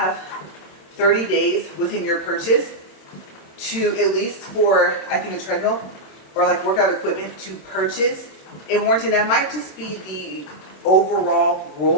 30 days within your purchase to, at least for, I think, a treadmill or like workout equipment, to purchase a warranty. That might just be the overall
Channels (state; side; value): late; right; 27 ms